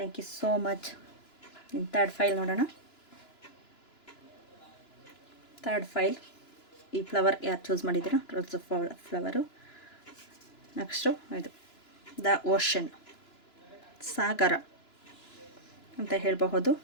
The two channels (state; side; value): late; right; 2.9 ms